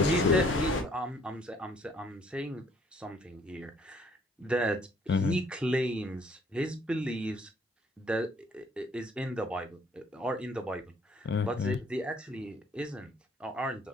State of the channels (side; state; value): both; normal; correlation 0.61